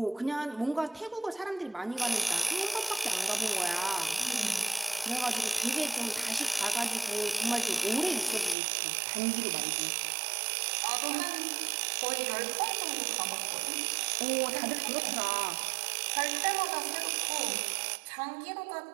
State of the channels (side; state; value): left; drops out; at 8.6 s